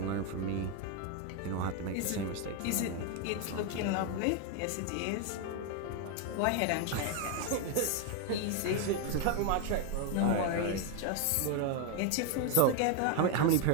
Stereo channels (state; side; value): different; both; correlation 0.01